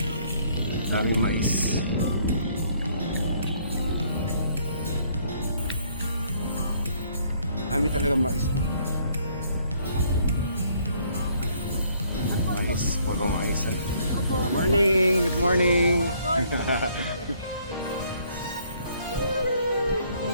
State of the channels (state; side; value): inverted; both; correlation -0.64